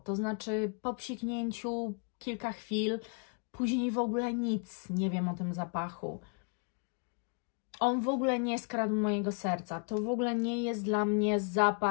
To znaczy po psiknięciu kilka chwil, później w ogóle nic nie wiem o tym zapachu. On w ogóle nie skradł mojego serca. To w ogóle nie jest dla mnie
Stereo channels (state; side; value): quieter; right; 39.8 dB